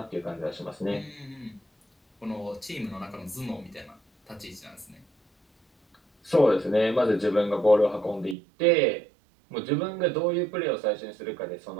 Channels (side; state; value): left; drops out; at 8.3 s